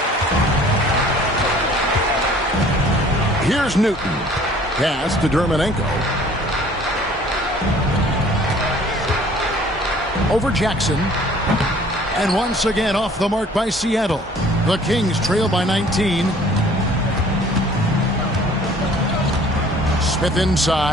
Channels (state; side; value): normal; both; correlation 0.53